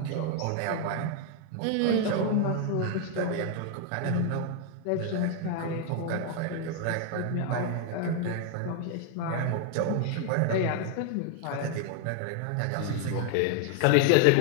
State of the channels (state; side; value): different; both; correlation 0.00